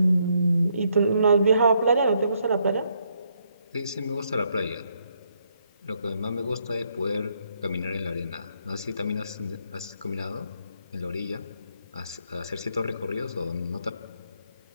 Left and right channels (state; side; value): inverted; both; correlation -0.74